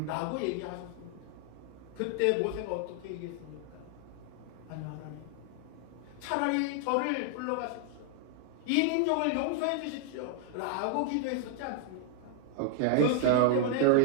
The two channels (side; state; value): both; different; correlation 0.00